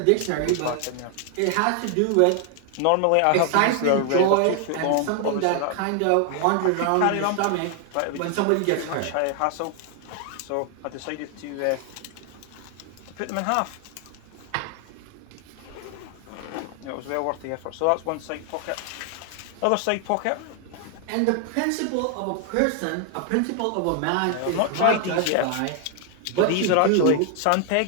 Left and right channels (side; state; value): both; different; correlation 0.00